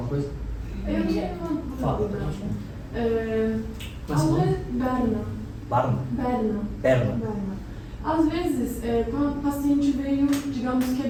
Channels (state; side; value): identical; both; correlation 1.00